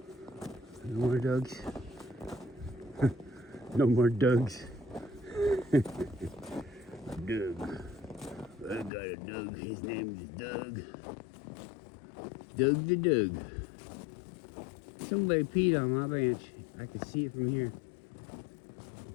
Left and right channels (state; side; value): drops out; right; at 8.9 s